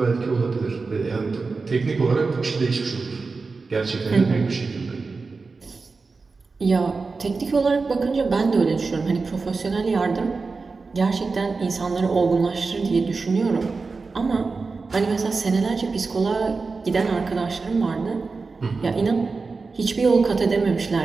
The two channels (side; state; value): left; quieter; 4.2 dB